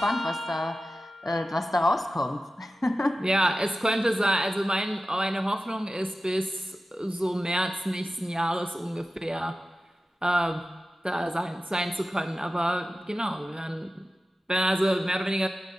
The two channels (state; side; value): normal; both; correlation 0.94